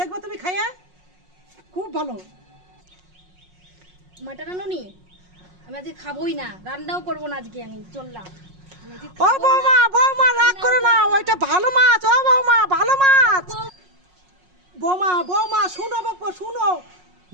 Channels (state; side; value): late; left; 5.5 ms